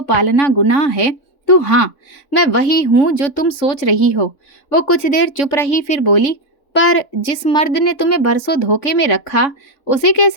पालना गुनाह है तो हाँ, मैं वही हूँ जो तुम सोच रही हो। वो कुछ देर चुप रही, फिर बोली, पर जिस मर्द ने तुम्हें बरसों धोखे में रखा, उसे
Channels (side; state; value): right; late; 3.5 ms